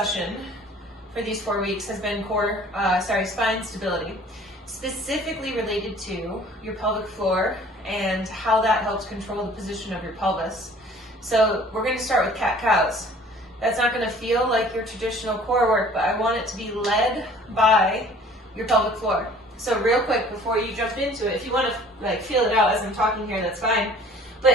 for these 4 weeks has been spine stability, specifically related to your pelvic floor and how that helps control the position of your pelvis. So we're going to start with cat-cows. That's not going to feel like your traditional core work, but I want it to be led by your pelvic floor. So real quick before you jump into it, if you want to feel it out as I'm talking here, that's fine.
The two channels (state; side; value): normal; both; correlation 0.51